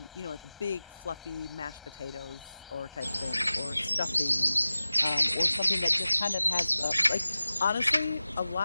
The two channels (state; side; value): inverted; both; correlation -0.96